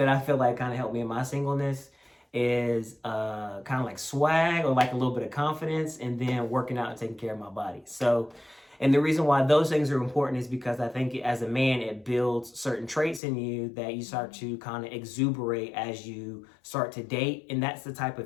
I feel like kind of helped me in my singleness is kind of like swag, or like a little bit of confidence, and then working out and taking care of my body. So, and the reason why those things are important is because I think as a man, it builds certain traits in you that you start to kind of exuberate as you start to date. And that's the type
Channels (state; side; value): drops out; right; at 13.2 s